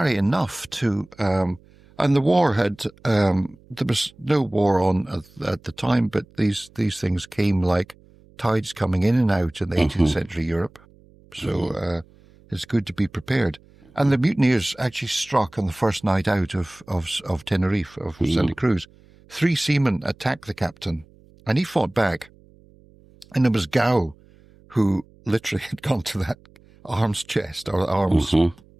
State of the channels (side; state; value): right; noise; hum, 27 dB below the sound